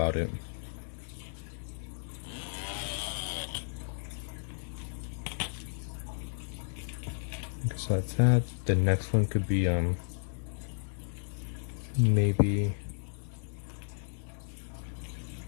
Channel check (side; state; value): right; silent; digital silence